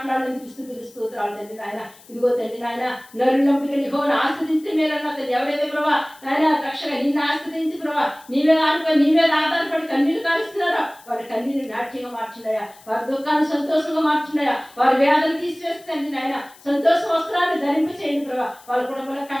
స్తుతులు స్తోత్రాలు తండ్రి నాయన. ఇదిగో తండ్రి నాయన, నరుని నమ్మిక యెహోవాను ఆశ్రయించి మేలన్నా తండ్రి. ఎవరైతే ప్రభా నాయన రక్షగా నిన్ను ఆశ్రయించి ప్రభా నీ మీద ఆధారపడి కన్నీళ్లు కారుస్తున్నారో వారి కన్నీళ్ళు నాట్యంగా మార్చున్నాయా, వారి దుఃఖాన్ని సంతోషంగా మార్చున్నాయా, వారి వేదన తీసివేస్తుంది నాయన. సంతోష వస్త్రాన్ని ధరింప చేయండి ప్రభా. వాళ్ళ కుటుంబంలో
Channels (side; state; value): left; noise; hiss, 24 dB below the sound